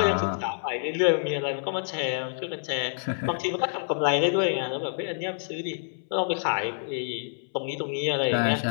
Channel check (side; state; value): right; silent; 60 dB below the other